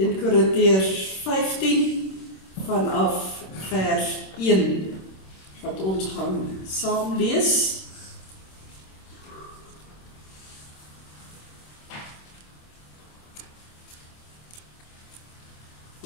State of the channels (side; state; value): right; late; 26 ms